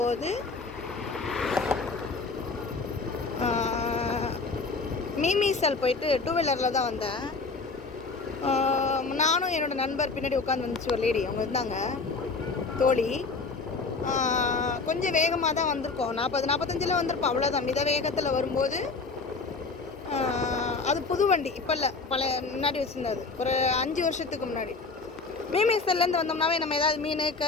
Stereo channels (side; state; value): right; quieter; 4.2 dB